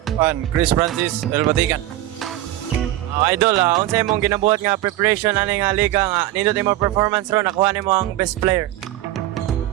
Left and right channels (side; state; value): left; quieter; 14.9 dB